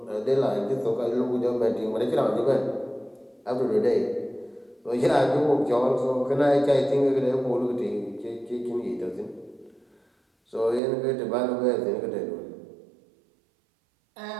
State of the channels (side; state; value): left; drops out; at 10.8 s